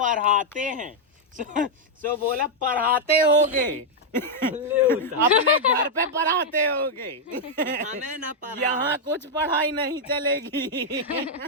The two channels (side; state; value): both; normal; correlation -0.02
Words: हैं। सो बोला पढ़ाते होगे। अपने घर पे पढ़ाते होगे। हमें ना यहाँ कुछ पढ़ाई नहीं चलेगी।